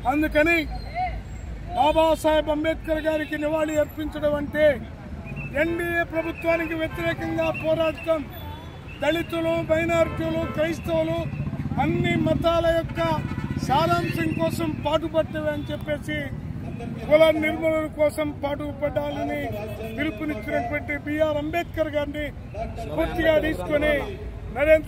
అందుకని బాబాసాహెబ్ అంబేద్కర్ గారికి నివాళి అర్పించడం అంటే ఎన్డీఏ ప్రభుత్వానికి వ్యతిరేకంగా పోరాడటం, దళితులు, మైనారిటీలు, క్రైస్తవులు అన్ని మతాల యొక్క సారాంశం కోసం పాటుపడ్డవి అని చెప్పేసి కుల నిర్మూలన కోసం పాటుపడాలని పిలుపునిచ్చినటువంటి బిఆర్ అంబేద్కర్ గారిని పూర్తిగా తీసుకుని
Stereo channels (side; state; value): both; identical; correlation 1.00